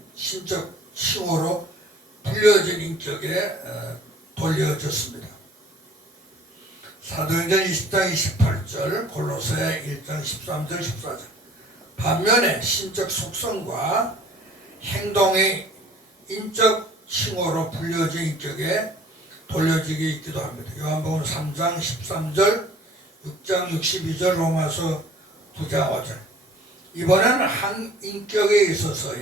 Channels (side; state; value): both; normal; correlation 0.51